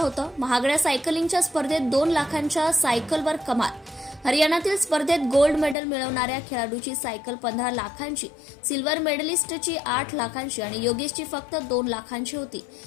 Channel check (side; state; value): right; drops out; at 5.8 s